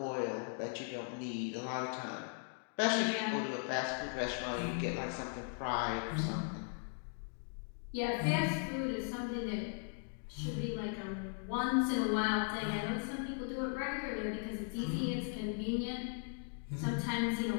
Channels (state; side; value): silent; right; 52 dB below the other